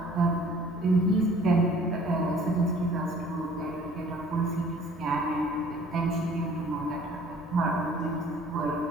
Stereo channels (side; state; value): both; normal; correlation 0.53